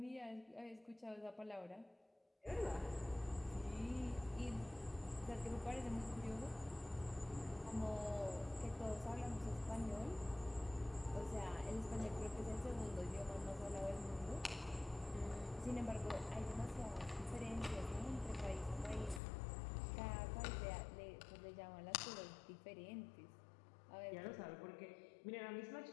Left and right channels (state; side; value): drops out; right; at 19.2 s